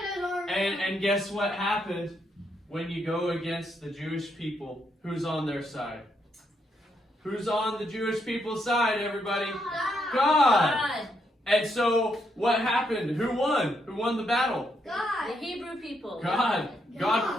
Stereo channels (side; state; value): both; normal; correlation 0.77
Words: And guess what happened when you go against the Jewish people? Who's on their side? Who's on the Jewish people's side, everybody? God! And so, what happened? Who won? Who won the battle? God. The Hebrew people. God.